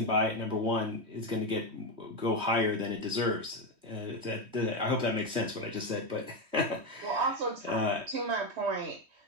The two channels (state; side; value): late; left; 3.2 ms